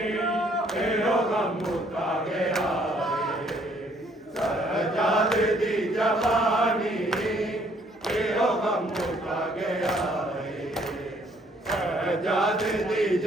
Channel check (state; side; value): normal; both; correlation 0.64